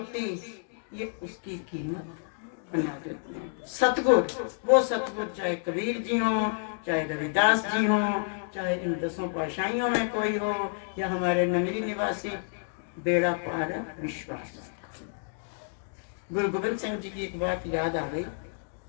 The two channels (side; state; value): right; silent; digital silence